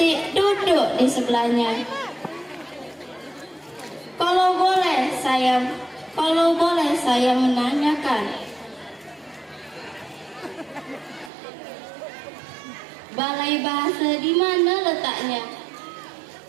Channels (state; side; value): drops out; left; at 11.3 s